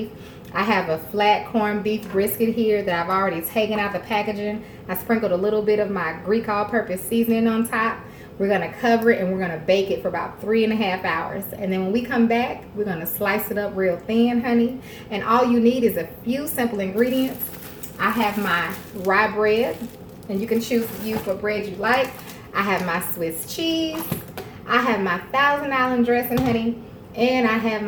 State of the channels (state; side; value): identical; both; correlation 1.00